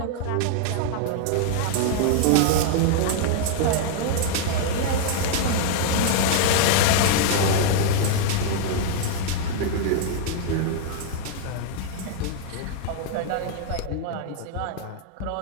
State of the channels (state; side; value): different; both; correlation -0.01